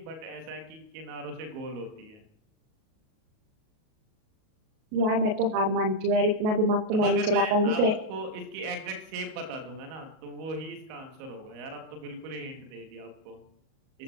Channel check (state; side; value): late; left; 38 ms